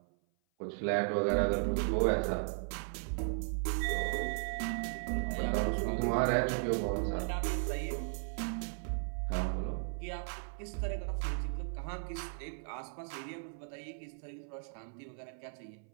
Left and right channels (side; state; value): left; silent; 54 dB below the other